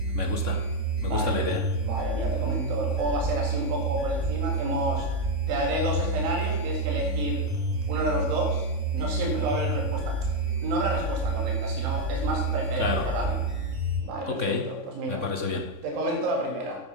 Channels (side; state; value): left; late; 3.6 ms